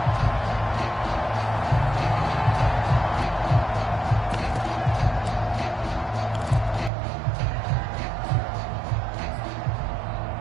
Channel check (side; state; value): left; drops out; at 6.9 s